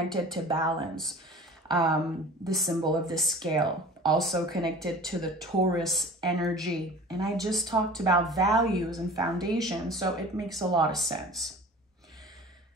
to balance. The symbol of the scale, also connected to the Taurus energy. And I just talked about values and foundation, so it makes a lot of sense.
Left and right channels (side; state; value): both; normal; correlation 0.42